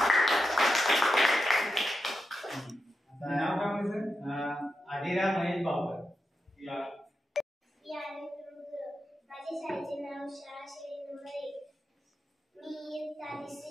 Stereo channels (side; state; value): both; normal; correlation 0.88